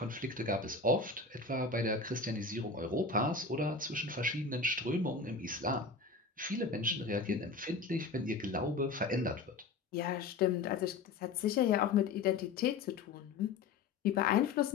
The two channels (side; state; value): right; quieter; 4.4 dB